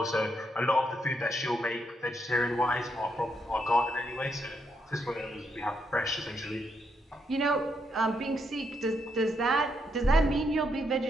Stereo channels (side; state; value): both; normal; correlation 0.78